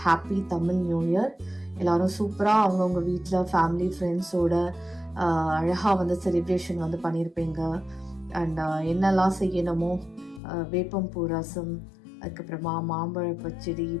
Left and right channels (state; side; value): drops out; right; at 10.4 s